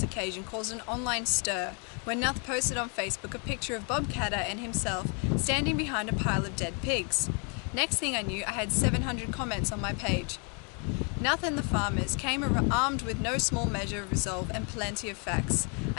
occasion caused an online stir when Nuth posted on Facebook a picture of Bob Catter and himself standing behind a pile of dead pigs. Next thing I knew, I had 700 comments on my page. Nuth and the farmers came armed with no small measure of resolve and plenty of facts.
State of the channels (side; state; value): right; quieter; 37.1 dB